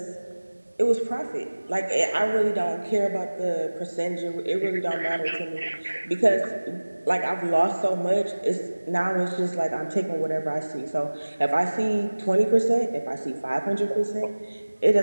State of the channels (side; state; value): both; inverted; correlation -1.00